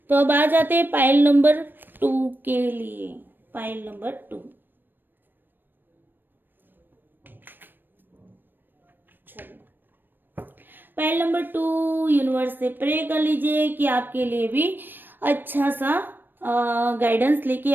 तो अब आ जाते हैं पाइल नंबर 2 के लिए। पाइल नंबर 2, चलो, पाइल नंबर 2 यूनिवर्स से प्रे कर लीजिए कि आपके लिए भी अच्छा सा गाइडेंस लेके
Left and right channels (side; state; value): left; late; 0.094 ms